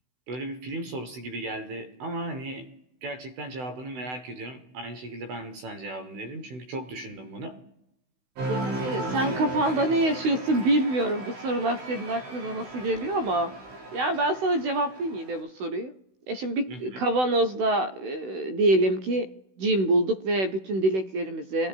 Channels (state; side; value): late; left; 16 ms